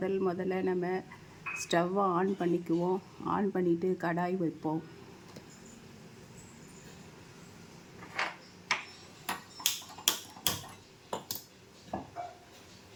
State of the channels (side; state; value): both; identical; correlation 1.00